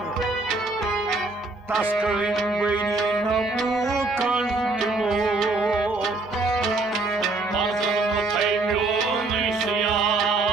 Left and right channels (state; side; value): quieter; left; 3.3 dB